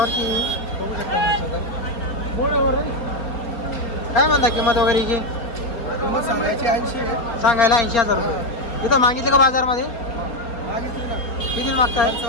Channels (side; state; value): right; late; 4.3 ms